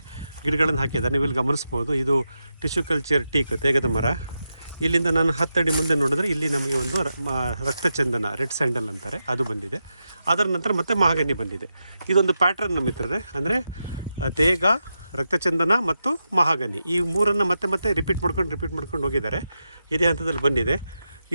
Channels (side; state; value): both; inverted; correlation -0.88